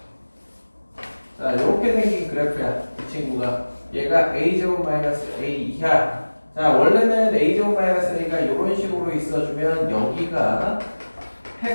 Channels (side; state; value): both; inverted; correlation -1.00